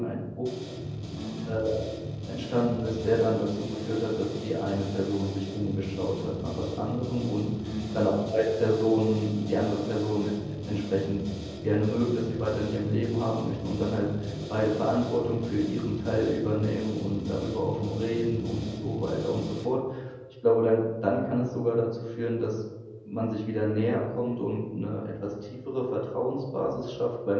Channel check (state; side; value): identical; both; correlation 1.00